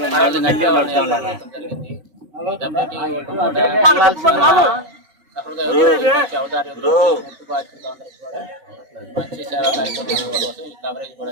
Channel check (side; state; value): left; late; 5.3 ms